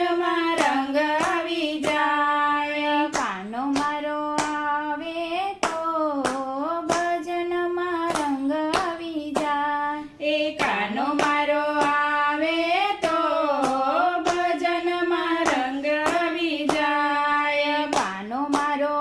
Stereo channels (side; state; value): both; identical; correlation 1.00